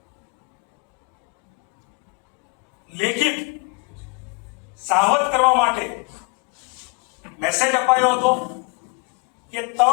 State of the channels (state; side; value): quieter; right; 31.3 dB